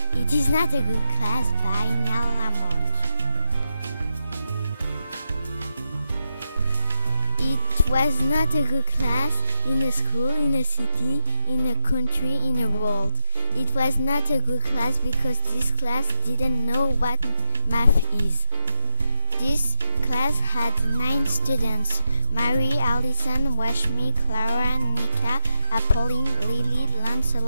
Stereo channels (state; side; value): inverted; both; correlation -0.85